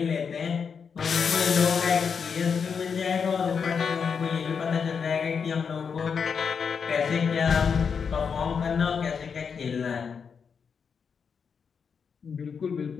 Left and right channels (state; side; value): quieter; right; 6.2 dB